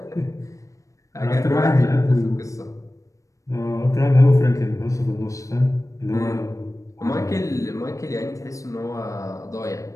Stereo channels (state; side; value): late; right; 0.16 ms